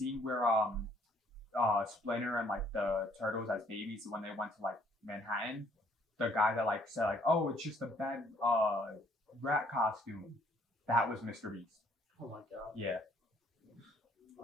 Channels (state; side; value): normal; both; correlation 0.62